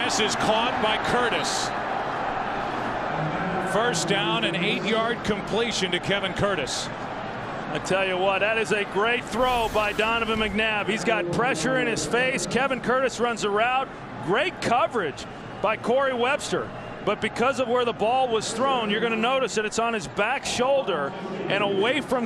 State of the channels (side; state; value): both; identical; correlation 1.00